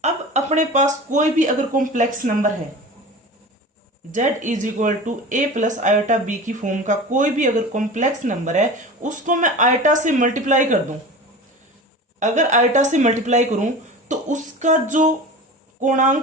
अब अपने पास कोई भी अगर कॉम्प्लेक्स नंबर है, Z is equal to a plus iota B की फॉर्म का कोई भी अगर कॉम्प्लेक्स नंबर है उसको मैं आयोटा से मल्टीप्लाई कर दूं, अगर आयोटा से मल्टीप्लाई करूं तो उसका जो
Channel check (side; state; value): both; normal; correlation 0.34